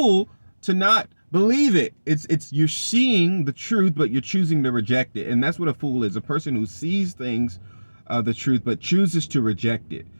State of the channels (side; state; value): both; inverted; correlation -1.00